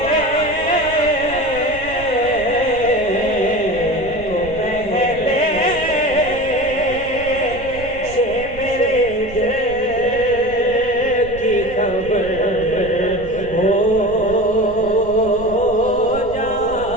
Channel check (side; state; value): right; noise; rumble, 15 dB below the sound